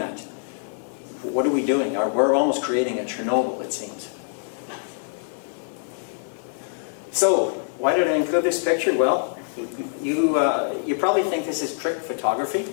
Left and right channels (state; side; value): silent; right; digital silence